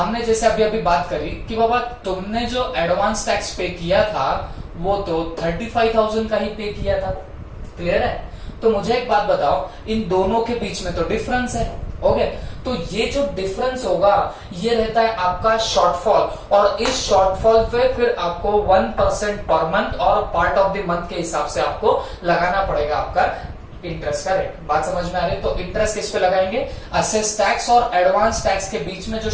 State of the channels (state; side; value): identical; both; correlation 1.00